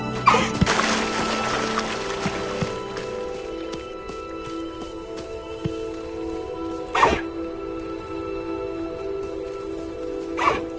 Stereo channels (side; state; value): both; identical; correlation 1.00